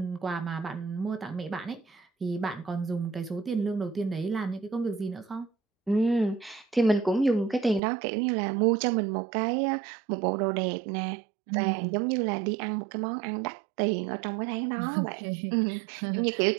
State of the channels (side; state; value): left; drops out; at 7.8 s